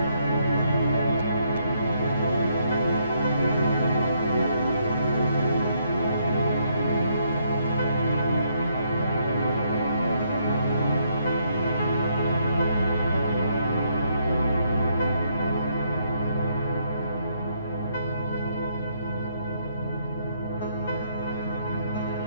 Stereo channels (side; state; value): both; inverted; correlation -0.72